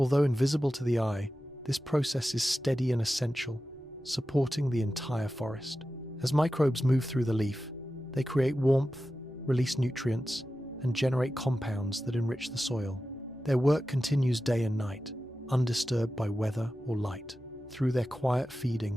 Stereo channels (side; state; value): both; normal; correlation 0.93